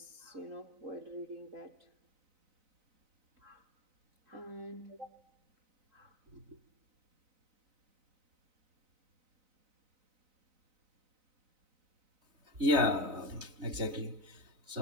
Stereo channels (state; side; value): late; left; 3.9 ms